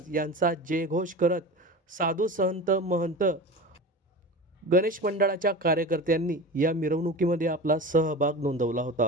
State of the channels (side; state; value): both; normal; correlation 0.31